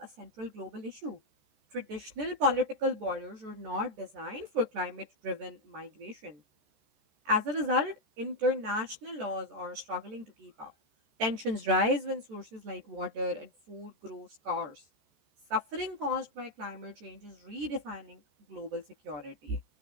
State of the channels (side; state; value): left; late; 14 ms